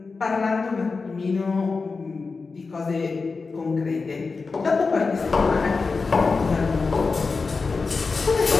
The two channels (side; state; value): right; quieter; 4.4 dB